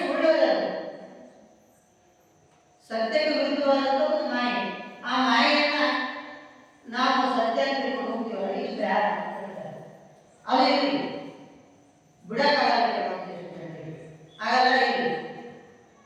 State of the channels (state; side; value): identical; both; correlation 1.00